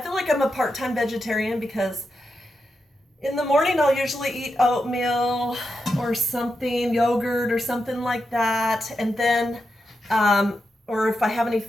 like I'm a part-time vegetarian because in the morning I'll usually eat oatmeal or something, yogurt or something like that. And then, or if I have any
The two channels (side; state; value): both; normal; correlation 0.87